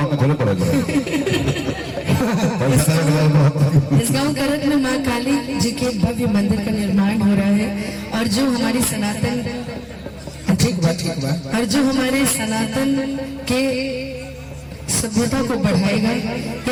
में थोड़ा पढ़ दो इस गांव करत में माँ काली जी के भव्य मंदिर का निर्माण हो रहा है और जो हमारी सनातन ठीक बा और जो हमारे सनातन के सभ्यता को बढ़ाएगा।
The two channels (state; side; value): identical; both; correlation 1.00